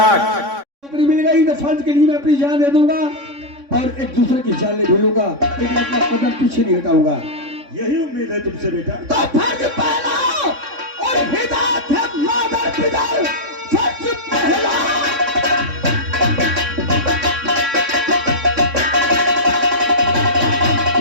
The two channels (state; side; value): late; left; 3.6 ms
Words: नौकरी मिल गई तो फर्ज के लिए मैं अपनी जान दे दूंगा और एक दूसरे की जान ले भूलूंगा, लेकिन अपना कदम पीछे नहीं हटाऊंगा। यही उम्मीद है तुमसे बेटा। तो फर्ज पहला और हिदायत है मादर पिता। फर्ज पहला